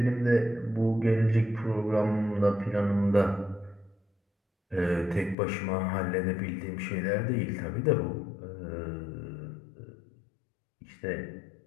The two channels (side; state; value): right; drops out; at 5.4 s